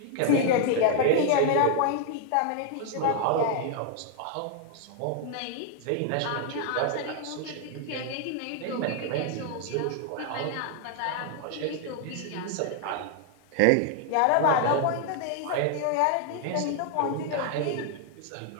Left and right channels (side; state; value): both; different; correlation 0.00